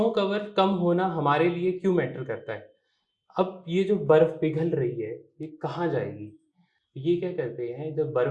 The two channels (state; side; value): identical; both; correlation 1.00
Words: कवर कम होना हमारे लिए क्यों मैटर करता है? अब ये जो बर्फ पिघल रही है ये कहाँ जाएगी? ये क्या करते हैं, जब